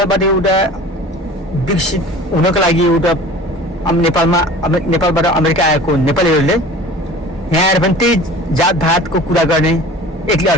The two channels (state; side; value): normal; both; correlation 0.42